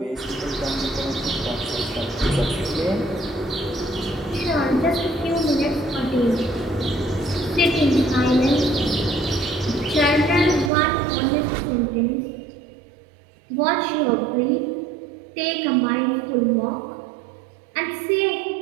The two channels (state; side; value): drops out; left; at 10.7 s